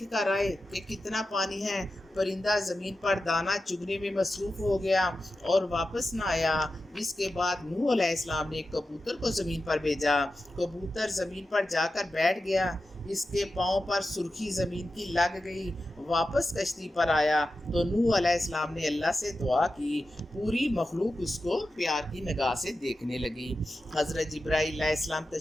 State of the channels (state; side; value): normal; both; correlation 0.92